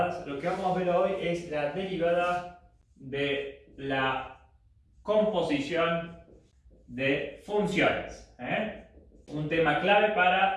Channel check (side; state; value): both; identical; correlation 1.00